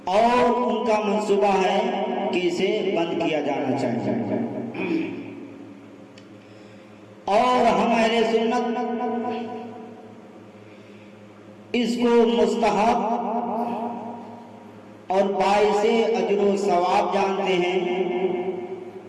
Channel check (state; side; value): identical; both; correlation 1.00